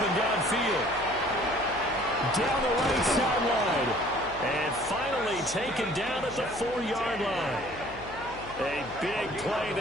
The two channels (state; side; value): noise; left; hum, 18 dB below the sound